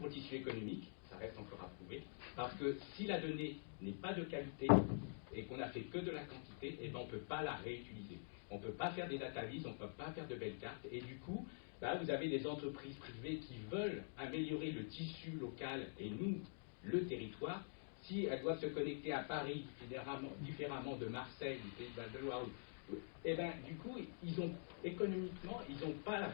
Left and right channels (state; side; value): silent; right; digital silence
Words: le tissu économique, ça reste encore à prouver, parce que si la donnée n'est pas de qualité et qu'on n'a fait que de la quantité, eh ben on ne peut pas la réutiliser. On ne peut pas faire des databases, on ne peut pas faire de belles cartes, et du coup, vous avez des entreprises privées qui veulent améliorer le tissu local et nous, le territoire. Si elles doivent se connecter à Paris différemment de Marseille, du Pays de Val-de-Loire, et du coup, économiquement, ils n'ont pas la